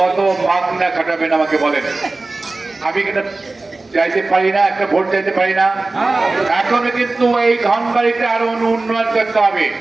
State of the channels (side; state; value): left; quieter; 3.3 dB